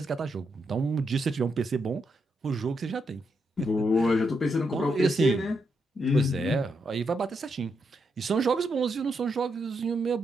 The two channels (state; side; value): normal; both; correlation 0.81